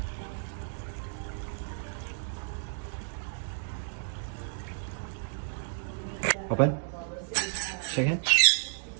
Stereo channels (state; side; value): silent; left; digital silence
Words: Open. Shake hand.